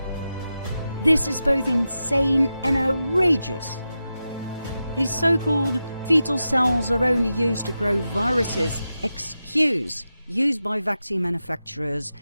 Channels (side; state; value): both; inverted; correlation -0.91